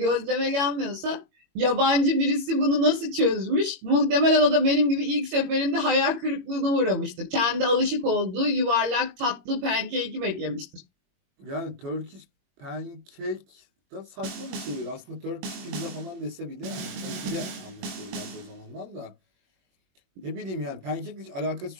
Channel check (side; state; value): left; late; 21 ms